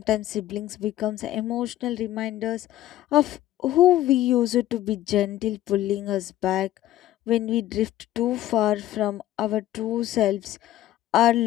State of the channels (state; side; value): quieter; right; 13.9 dB